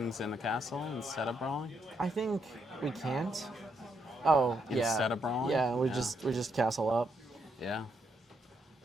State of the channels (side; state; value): both; normal; correlation 0.77